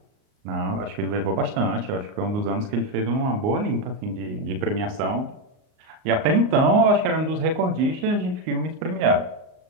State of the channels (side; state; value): left; late; 38 ms